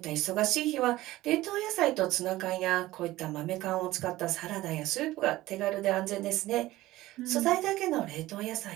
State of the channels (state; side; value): quieter; left; 17.0 dB